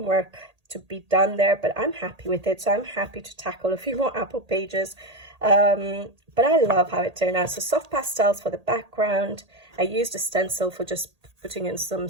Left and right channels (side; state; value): left; late; 1.8 ms